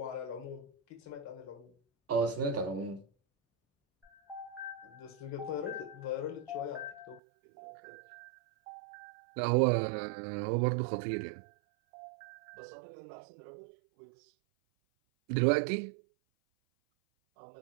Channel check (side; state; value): left; drops out; at 7.2 s